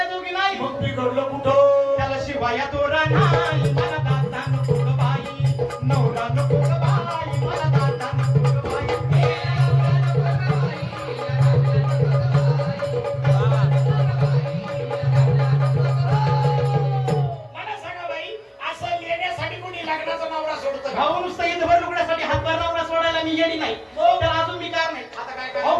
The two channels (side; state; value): both; identical; correlation 1.00